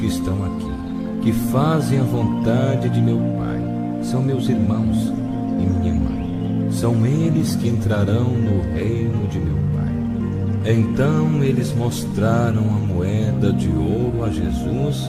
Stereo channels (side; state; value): both; identical; correlation 1.00